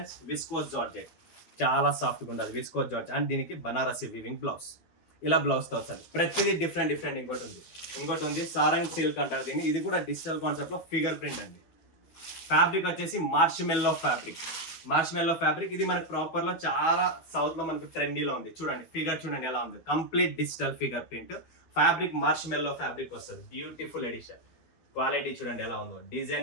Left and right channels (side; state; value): right; late; 12 ms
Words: విస్కోస్ జార్జెట్ చాలా సాఫ్ట్గా ఉంటుంది. విస్కోస్ జార్జెట్ అండ్ దీనికి బనారసి వీవింగ్ బ్లౌజ్, ఇలా బ్లౌజ్తో వస్తుంది. ప్రతిదీ డిఫరెంట్ డిఫరెంట్. ఇంకోటి ఉంది సారంగ్ సిల్క్ అంటారు దీన్ని. ఇది కూడా డిజిటల్ కాన్సెప్ట్ లో ఫిగర్ ప్రింట్ అండి. ఫ్యాబ్రిక్ వచ్చేసి మార్ష్మెల్లో ఫ్యాబ్రిక్. ఇది మనకి ప్రాపర్ లో చాలా సౌత్ లో మనకు ట్రెండీలో ఉంది. చూడండి ఫిగర్ చూడండి ఎలా ఉంది, complete digital figure print. Fabric marshmallow fabric వస్తుంది. Beautiful edition. క్వాలిటీ చూడండి ఎలా ఉందో,